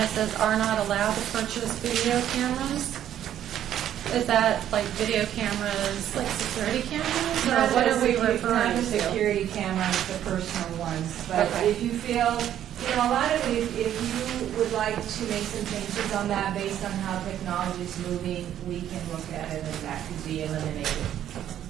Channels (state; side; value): quieter; left; 11.0 dB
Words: says are not allowed to purchase video cameras. Is that like video cameras, like security cameras, or what are we referring Not the to? security cameras, the personal ones. But Okay. if you feel You know, a lot of it, if you would like to make some changes on that based on how technology is moving, we can look at it and that could be eliminated.